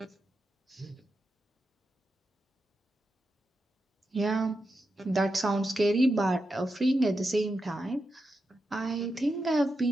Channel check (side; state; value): both; normal; correlation 0.88